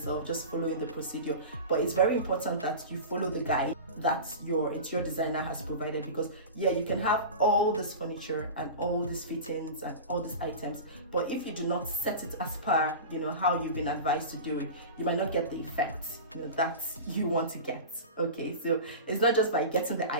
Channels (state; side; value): inverted; both; correlation -0.30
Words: just following the procedure. But it's very important that you follow the guide that your interior designer has provided, because you can have all this furniture and all these fittings and all these items, but if you do not set it as per how you've been advised to do it, you might not get the effect that you want to get. Okay, so it's not just by getting the